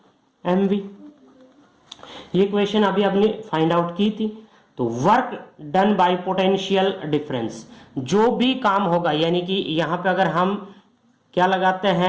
M V. ये क्वेश्चन अभी आपने फाइंड आउट की थी। तो work done by potential difference, जो भी काम होगा यानी कि यहां पे अगर हम क्या लगाते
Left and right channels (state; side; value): identical; both; correlation 1.00